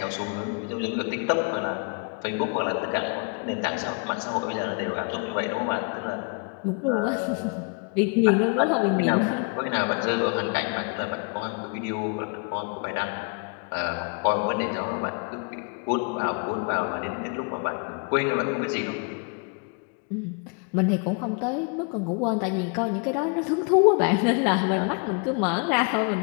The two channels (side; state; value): right; quieter; 35.6 dB